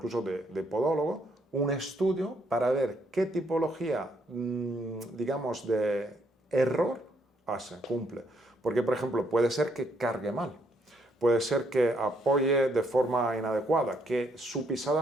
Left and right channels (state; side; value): normal; both; correlation 0.72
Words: de podólogo, un estudio para ver qué tipología, digamos, de error cumple. Porque, por ejemplo, puede ser que cargue mal, puede ser que apoye de forma inadecuada, que su pisada